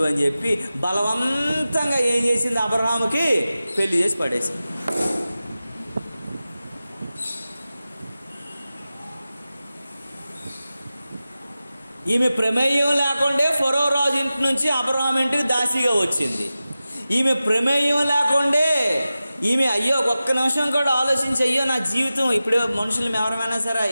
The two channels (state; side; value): inverted; both; correlation -0.95